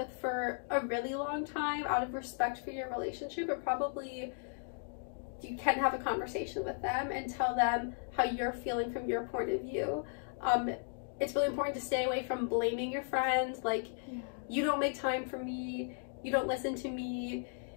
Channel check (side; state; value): right; silent; 54 dB below the other